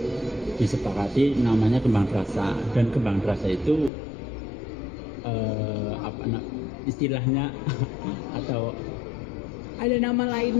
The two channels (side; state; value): right; drops out; at 3.9 s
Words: disepakati namanya Kembang Terasa, dan Kembang Terasa itu istilahnya atau ada nama